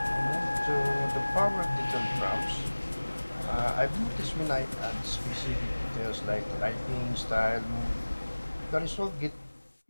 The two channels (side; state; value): both; inverted; correlation -1.00